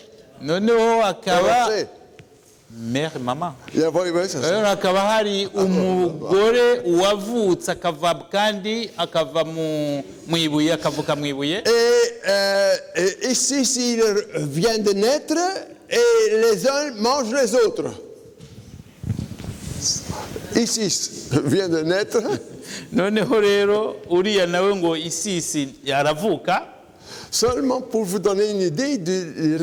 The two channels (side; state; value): both; identical; correlation 1.00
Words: Noneho akaba mère mama. Akaba hari umugore wavutse akava kandi akava mu ibuye akavuka mu ibuye. Et ici, s'il vient de naître, et les uns mangent les autres. Isis vient de naître. noneho rero uriya nawe ngo Isisi aravuka. Seulement pour vous donner une idée de la